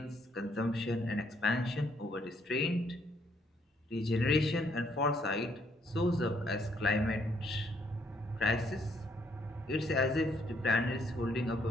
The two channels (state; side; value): normal; both; correlation 0.70